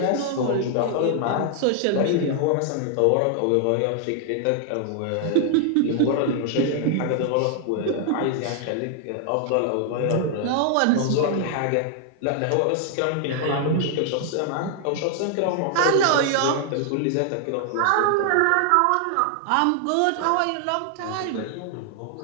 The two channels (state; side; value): different; both; correlation 0.00